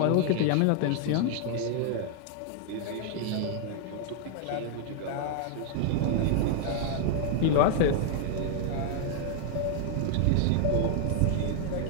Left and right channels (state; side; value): different; both; correlation 0.00